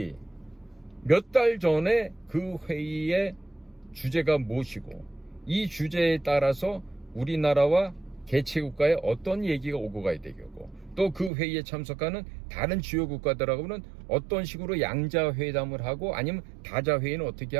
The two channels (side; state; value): left; drops out; at 11.3 s